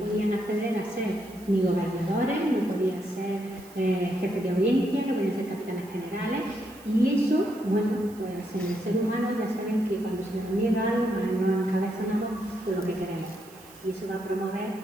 acceder a ser ni gobernadores, no podían ser jefes de audiencia, no podían ser capitanes generales. Y eso, bueno, pues en el ser humano ya saben que cuando se nos niega algo, nos encabezonamos por lo que queremos. Y eso va a promover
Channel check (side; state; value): right; noise; hiss, 23 dB below the sound